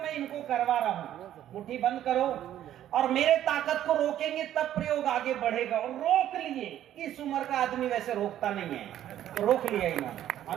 इनको करवा रहा हूं, मुट्ठी बंद करो और मेरे ताकत को रोकेंगे तब प्रयोग आगे बढ़ेगा। और रोक लिए, इस उम्र का आदमी वैसे रोकता नहीं है, तो रोक लिया इन्होंने,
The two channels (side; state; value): left; quieter; 11.7 dB